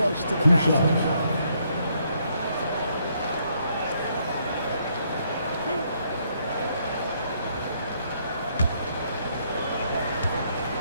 to the basket.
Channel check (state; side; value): inverted; both; correlation -0.71